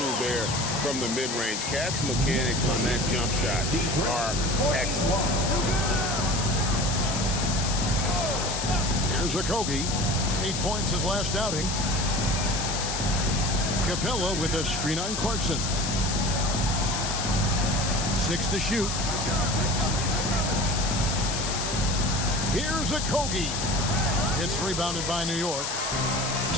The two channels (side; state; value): left; noise; hiss, 3 dB below the sound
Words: there from the mid-range. Cat's mechanics on that jump shot are excellent. Here's Okogie. 8 points his last outing. Capella with a screen on Clarkson. 6 to shoot. Here's Okogie. It's rebounded by New York.